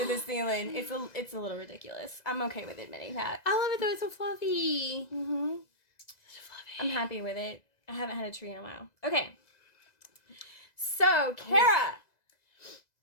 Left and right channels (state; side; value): late; right; 2.0 ms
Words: the ceiling. It's a little ridiculous. I'm okay with admitting that. I love it though. It's so fluffy. Mm-hmm. So fluffy. I'm happy with it. I haven't had a tree in a while. Okay. So, Cara.